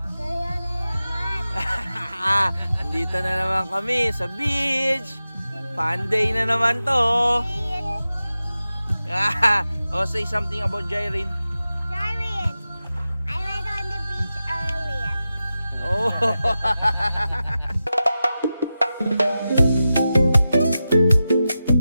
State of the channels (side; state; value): both; inverted; correlation -0.93